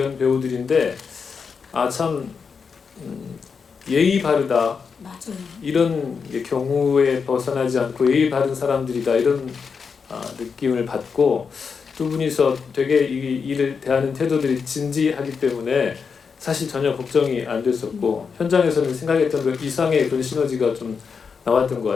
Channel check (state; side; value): quieter; right; 5.7 dB